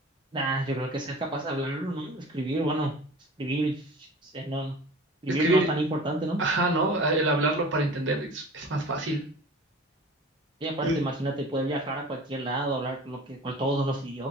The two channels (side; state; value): both; normal; correlation 0.41